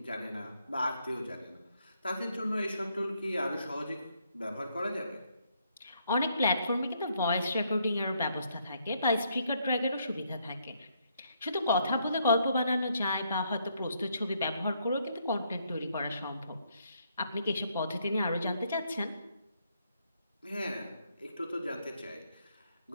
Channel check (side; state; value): both; inverted; correlation -0.72